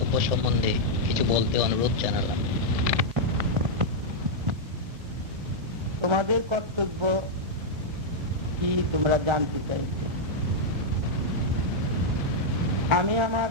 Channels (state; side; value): late; left; 1.7 ms